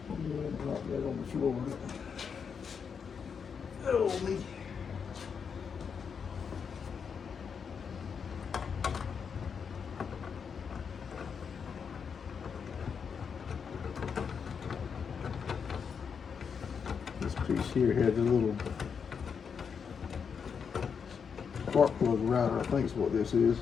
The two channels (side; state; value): right; quieter; 6.5 dB